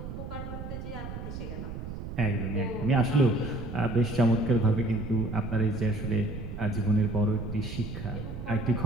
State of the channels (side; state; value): right; noise; rumble, 8 dB below the sound